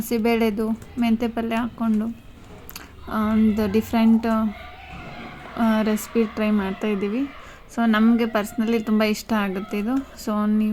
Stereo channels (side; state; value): both; identical; correlation 1.00